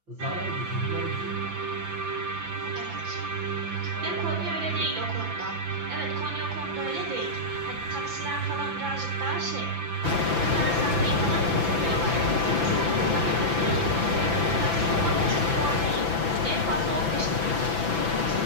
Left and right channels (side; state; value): left; late; 5.9 ms